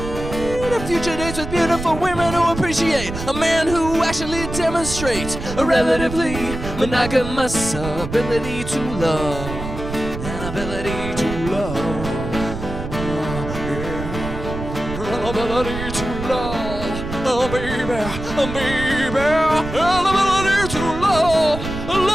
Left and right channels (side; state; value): right; noise; rumble, 8 dB below the sound